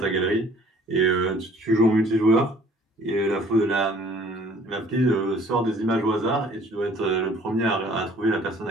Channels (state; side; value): normal; both; correlation 0.55